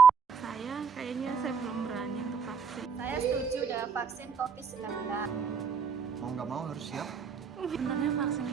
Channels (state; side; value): quieter; left; 6.1 dB